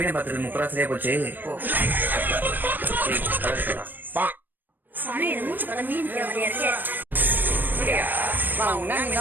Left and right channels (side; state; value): left; late; 0.090 ms